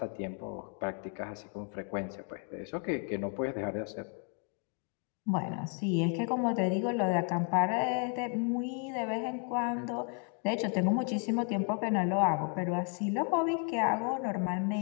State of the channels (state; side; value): quieter; right; 35.6 dB